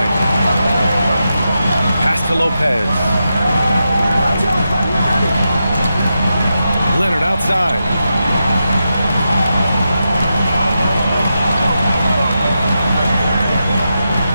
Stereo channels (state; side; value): inverted; both; correlation -0.87